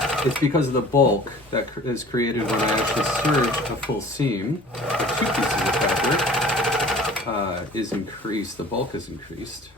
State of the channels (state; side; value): normal; both; correlation 0.47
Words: It's because of the bulk that is created when I actually serge a full seam. The 2 pieces of fabric is increased. The bulk is increased.